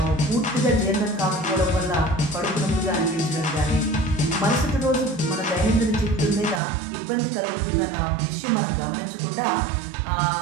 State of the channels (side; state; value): left; drops out; at 6.6 s